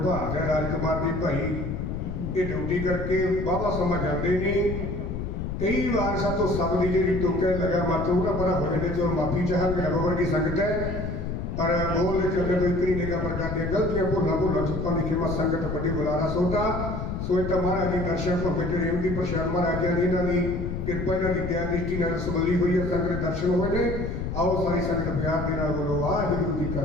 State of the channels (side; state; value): left; noise; rumble, 4 dB below the sound